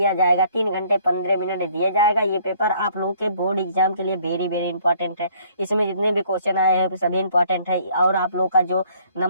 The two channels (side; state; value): both; inverted; correlation -0.60